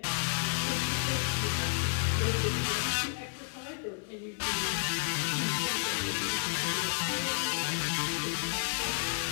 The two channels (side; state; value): right; silent; 57 dB below the other